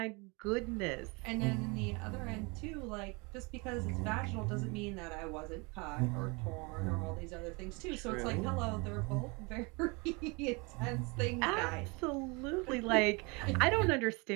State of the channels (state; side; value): quieter; left; 29.0 dB